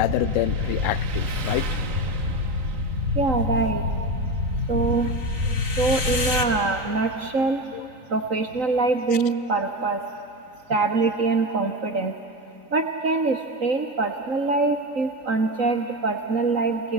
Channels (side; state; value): left; late; 3.9 ms